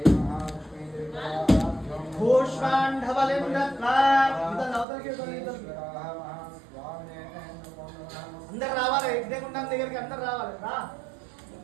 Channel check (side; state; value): left; drops out; at 4.9 s